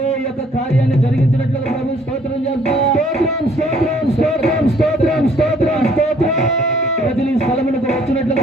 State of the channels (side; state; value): both; normal; correlation 0.61